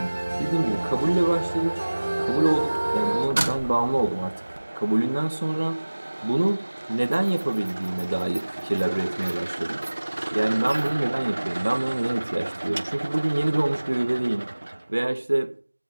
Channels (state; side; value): inverted; both; correlation -1.00